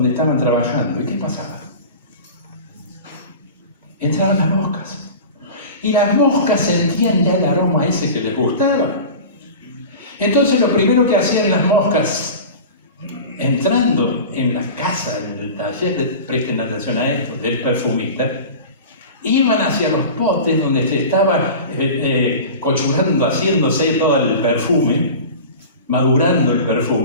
estaban trabajando. ¿Y qué pasaba? Entraban las moscas. Y las moscas sentían ya el aroma ese que les gustaba. Entonces lo primero que hacían las moscas, entrando en la casa, en el taller, presten atención a esto, del perfumista, iban hacia los potes donde se estaba cochurando, haciéndose todo el perfume, madurando el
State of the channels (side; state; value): both; inverted; correlation -0.34